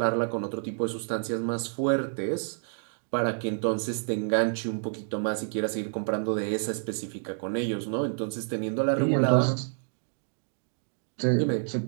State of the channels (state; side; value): silent; left; digital silence